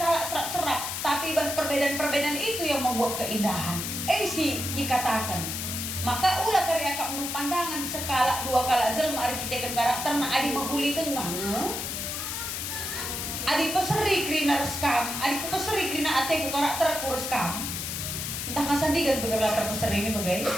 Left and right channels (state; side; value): noise; left; hiss, 4 dB below the sound